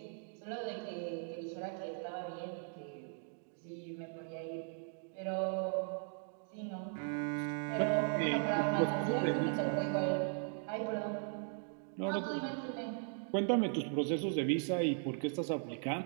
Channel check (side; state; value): left; silent; 52 dB below the other